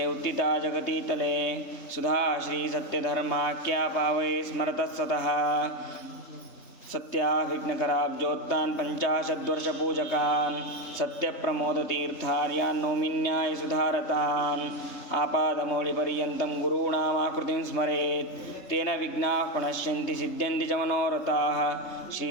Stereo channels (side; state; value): right; late; 3.3 ms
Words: ಉತ್ತಿತಾ ಜಗತೀತಲೆ ಸುಧಾ ಶ್ರೀಸತ್ಯಧರ್ಮಾಖ್ಯಾ ಪಾವಯೇ ಸ್ಮರತಃ ಸತಃ ಸತ್ಯಾಭಿಘ್ನಕರಾಬ್ಜೋತ್ಥಾನ್ ಪಂಚಾಶದ್ವರ್ಷಪೂಜಕಾನ್ ಸತ್ಯಪ್ರಮೋದತೀರ್ಥಾರ್ಯಾನ್ ನೌಮಿನ್ಯಾಯ ಸುಧಾರತಾನ್ ಆಪಾದಮೌಳಿಪರ್ಯಂತಂ ಗುರುಣಾಮಾಕೃತಿಂ ಸ್ಮರೇತ್ ತೇನ ವಿಘ್ನಾಃ ಪ್ರಣಶ್ಯಂತಿ ಸಿದ್ಧ್ಯಂತಿ ಚ ಮನೋರಥಾಃ ಶ್ರೀ